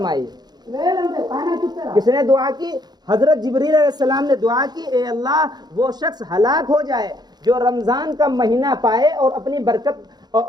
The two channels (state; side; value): late; left; 0.20 ms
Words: کس نے دعا کی؟ حضرت جبریل علیہ السلام نے دعا کی، اے اللہ، وہ شخص ہلاک ہو جائے جو رمضان کا مہینہ پائے اور اپنی برکت اور